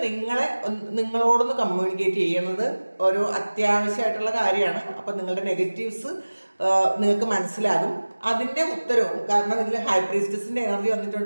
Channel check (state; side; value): inverted; both; correlation -1.00